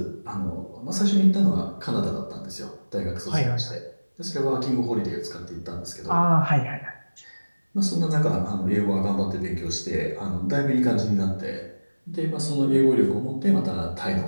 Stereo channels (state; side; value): inverted; both; correlation -1.00